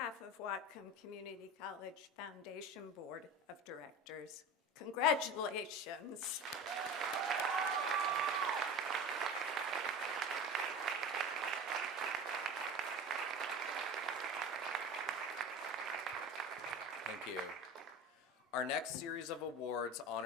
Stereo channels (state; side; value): normal; both; correlation 0.31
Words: of Whatcom Community College Foundation Board of Directors, congratulations. Thank you. Our next series of awards